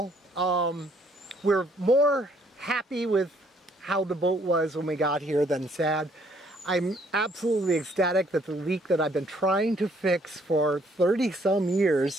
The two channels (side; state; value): both; normal; correlation 0.65